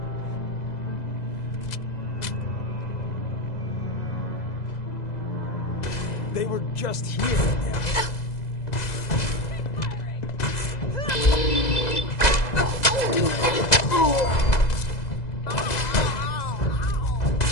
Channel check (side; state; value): right; late; 2.0 ms